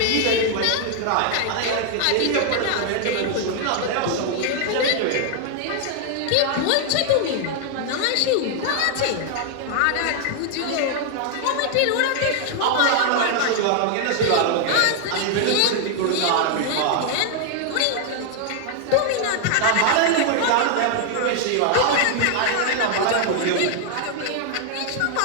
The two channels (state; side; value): different; both; correlation 0.00